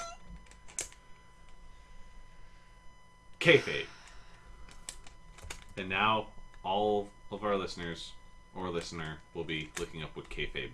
Kayfabe. And now all of our listeners or listener will be looking up what kayfabe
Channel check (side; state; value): both; identical; correlation 1.00